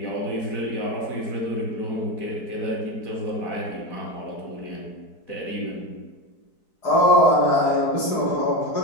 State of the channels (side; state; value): right; late; 4.6 ms